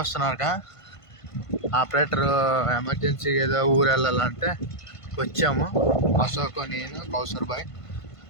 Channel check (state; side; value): late; right; 1.5 ms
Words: ఆపరేటర్ ఎమర్జెన్సీ ఏదో ఊరు వెళ్ళాలంటే వచ్చాము. అశోక్, నేను, కౌసర్ బాయ్